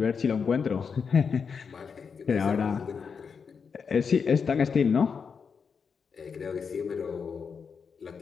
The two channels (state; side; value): quieter; right; 6.0 dB